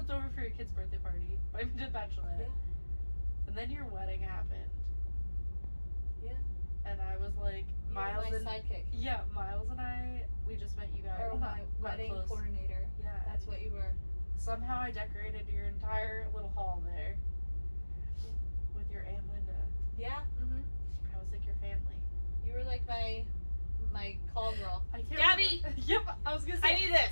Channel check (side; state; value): both; inverted; correlation -1.00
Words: over for your kid's birthday party. Invited me to the bachelorette. Yeah. And then your wedding happened. Yeah. And I was like, Miles my sidekick. Yeah, Miles and we just met you guys. Or my wedding coordinator. Yeah. That's what you were. Somehow I decorated your entire little hall there. With your Aunt Linda. Yeah. Mm-hmm. I was like your family. You were like my call girl. Gabby! Yep, I was gonna say. I need